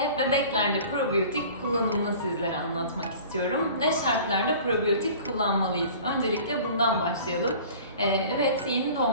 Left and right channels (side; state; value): both; inverted; correlation -0.44